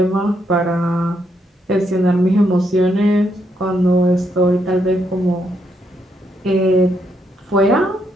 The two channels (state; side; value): normal; both; correlation 0.77